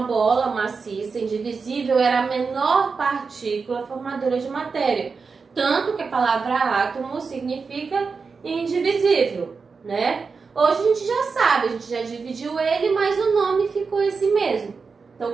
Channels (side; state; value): left; quieter; 4.9 dB